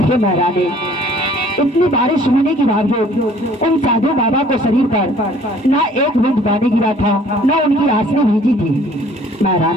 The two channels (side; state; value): both; normal; correlation 0.55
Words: हे महारानी, इतनी बारिश होने के बावजूद उन साधु बाबा को शरीर पर ना एक बूंद पानी गिरा था, ना उनकी आंसू भीजी थी।